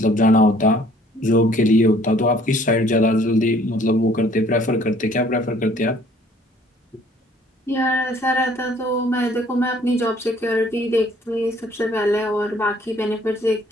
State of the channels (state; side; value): normal; both; correlation 0.57